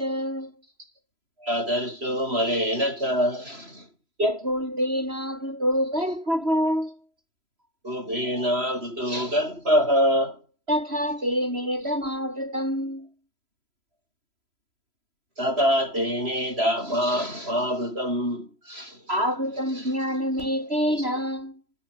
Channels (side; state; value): left; late; 3.0 ms